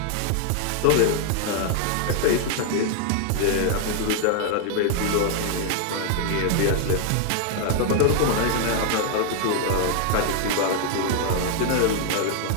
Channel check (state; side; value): different; both; correlation 0.00